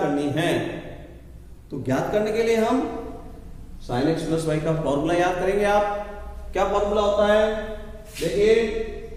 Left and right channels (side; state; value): both; identical; correlation 1.00